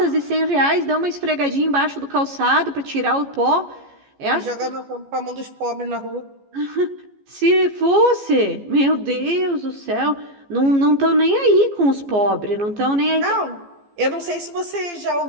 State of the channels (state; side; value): late; left; 14 ms